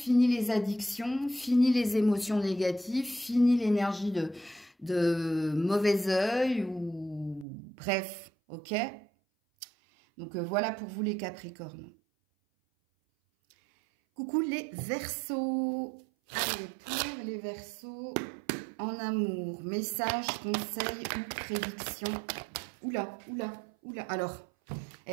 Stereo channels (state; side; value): drops out; left; at 7.5 s